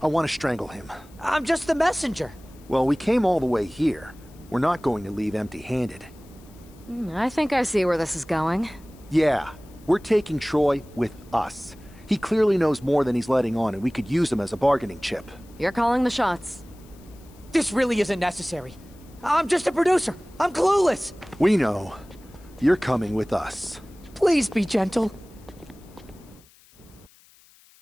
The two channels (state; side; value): noise; left; hiss, 28 dB below the sound